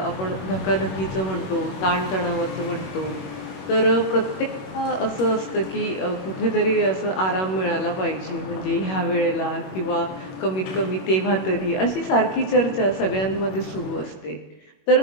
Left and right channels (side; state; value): right; late; 21 ms